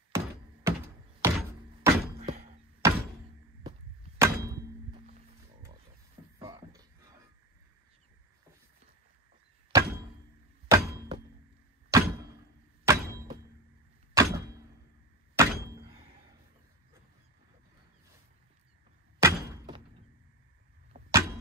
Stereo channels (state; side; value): normal; both; correlation 0.21